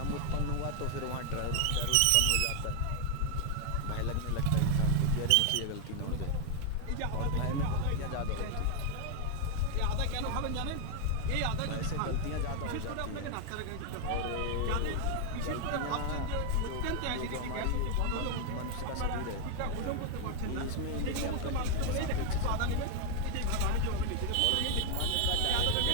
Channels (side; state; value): both; different; correlation 0.00